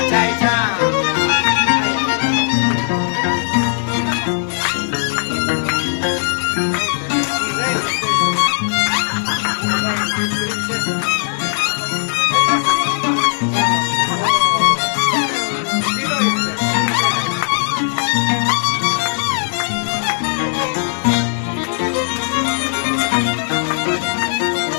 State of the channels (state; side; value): silent; right; digital silence